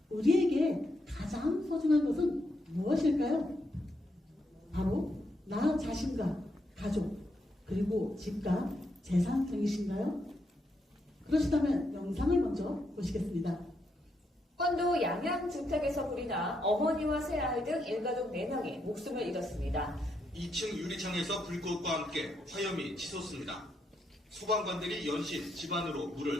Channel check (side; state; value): both; normal; correlation 0.79